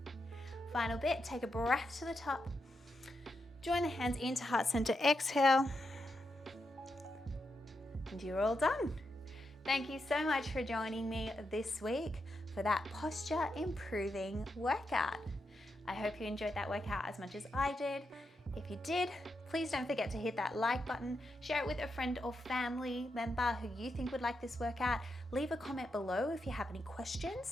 Final bit, take a breath to the top. Join the hands into heart center, exhale. And you're all done. Thank you so much for joining me this week for that posture improving workout. I hope you enjoyed that workout as much as I did. If you did, please don't forget to hit that like button, share it with a friend or family member who you think would like this workout. Leave a comment below if you have any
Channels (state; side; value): normal; both; correlation 0.85